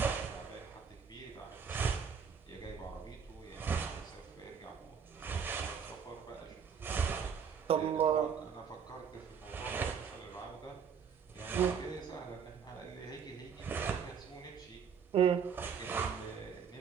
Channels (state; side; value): quieter; left; 6.8 dB